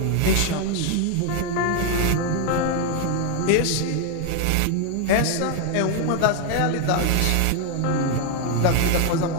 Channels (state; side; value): different; both; correlation 0.00